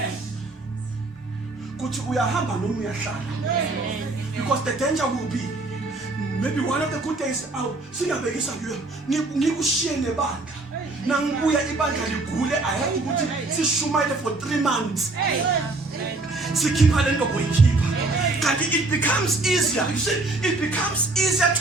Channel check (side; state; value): left; quieter; 3.2 dB